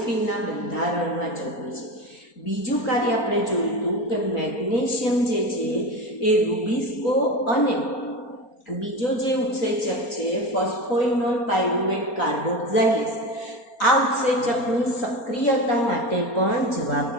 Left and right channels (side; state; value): right; late; 4.3 ms